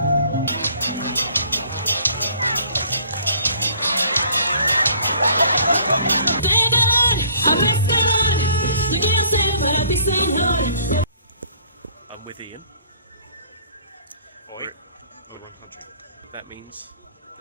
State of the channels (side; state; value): both; inverted; correlation -0.57